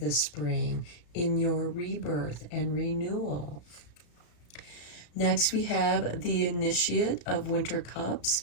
spring in your rebirth and renewal. Next, we have the Initiate of Winter Cups.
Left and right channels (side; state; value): right; late; 34 ms